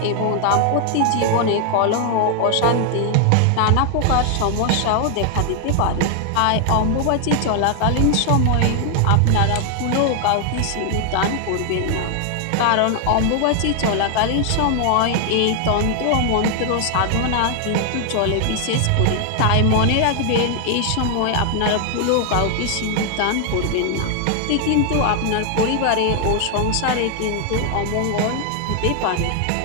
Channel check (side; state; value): both; different; correlation 0.00